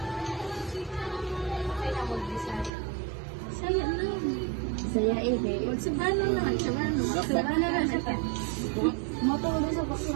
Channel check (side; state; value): left; drops out; at 2.7 s